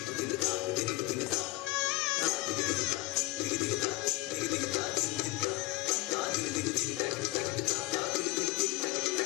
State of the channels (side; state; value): right; quieter; 20.2 dB